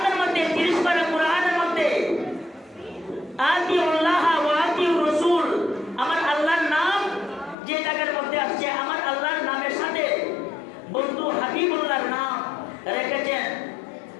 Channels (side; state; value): right; drops out; at 7.6 s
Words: মধ্যে 30 পারা কোরআনের মধ্যে আতিউল্লাহ ওয়া আতিউর রাসূল, আমার আল্লাহর নাম যে জায়গার মধ্যে আসছে, আমার আল্লাহর নামের সাথে বন্ধু হাবিবুল্লাহর নাম রেখেছেন